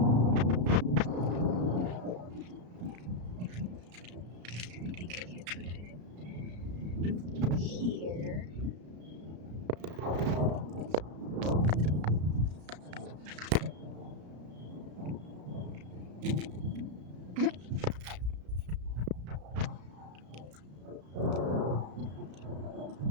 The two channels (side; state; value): left; late; 33 ms